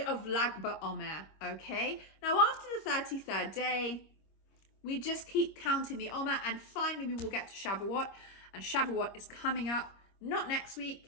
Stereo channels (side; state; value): right; late; 26 ms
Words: of Lag BaOmer. Okay, now after the 33rd day, we just keep counting the Omer, and finally we will get to Shavuot. And Shavuot is coming up, not next